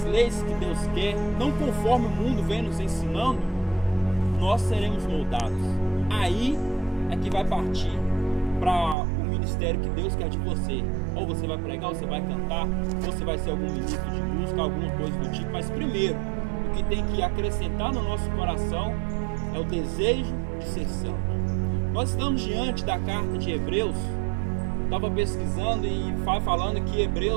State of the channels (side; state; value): left; drops out; at 9.0 s